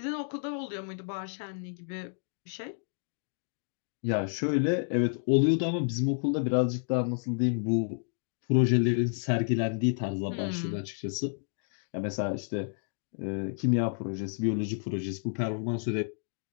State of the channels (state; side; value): silent; right; digital silence